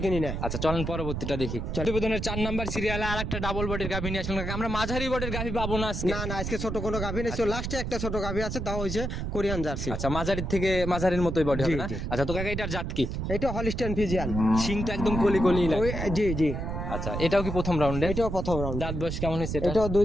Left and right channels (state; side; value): noise; right; rumble, 3 dB below the sound